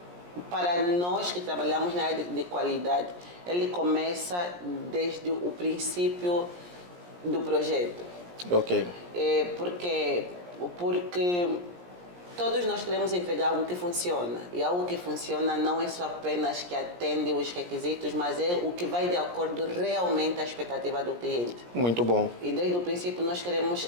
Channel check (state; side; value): late; left; 17 ms